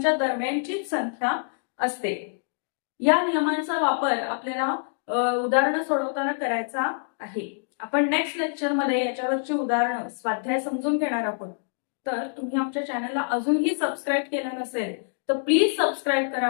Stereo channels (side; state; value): right; silent; digital silence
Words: दरम्यानचीच संख्या असते. या नियमांचा वापर आपल्याला उदाहरणं सोडवताना करायचा आहे. आपण नेक्स्ट लेक्चर मध्ये याच्यावरची उदाहरणं स्वाध्याय समजून घेणार आहोत. तर तुम्ही आमच्या चॅनलला अजूनही सबस्क्राईब केलं नसेल तर प्लीज सबस्क्राईब